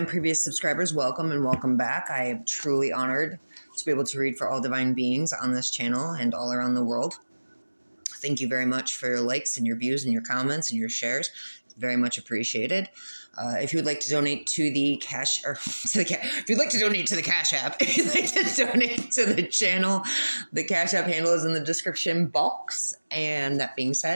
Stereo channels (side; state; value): both; inverted; correlation -1.00